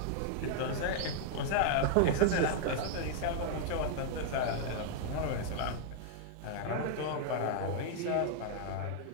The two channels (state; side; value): different; both; correlation -0.01